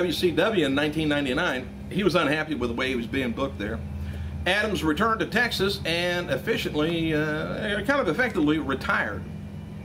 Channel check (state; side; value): identical; both; correlation 1.00